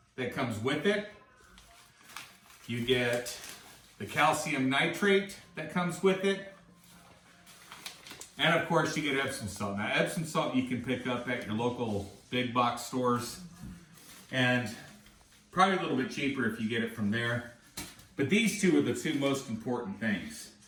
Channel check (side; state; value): both; identical; correlation 1.00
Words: that comes with it. You get the calcium nitrate that comes with it. And of course you get Epsom salt. Now Epsom salt you can pick up at your local big box stores, and probably a little bit cheaper if you get it from there. But these two are the 2 most important things.